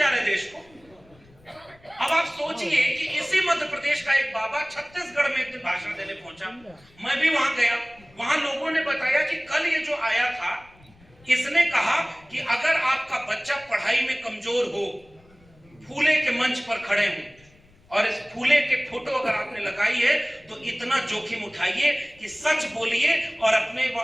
रहे देश को। अब आप सोचिए कि इसी मध्य प्रदेश का एक बाबा छत्तीसगढ़ में एक दिन भाषण देने पहुंचा, मैं भी वहां गया। वहां लोगों ने बताया कि कल ये जो आया था, इसने कहा कि अगर आपका बच्चा पढ़ाई में कमजोर हो, फूले के मंच पर खड़े हूं और इस फूले के फोटो अगर आपने लगाई है तो इतना जोखिम उठाइए कि सच बोलिए और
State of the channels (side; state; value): left; noise; rumble, 28 dB below the sound